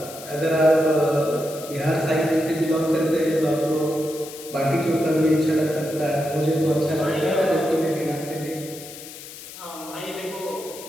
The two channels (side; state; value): left; noise; hiss, 14 dB below the sound